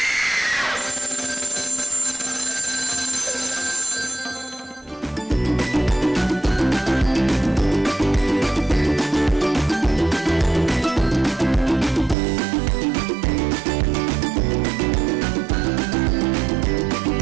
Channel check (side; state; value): left; drops out; at 12.2 s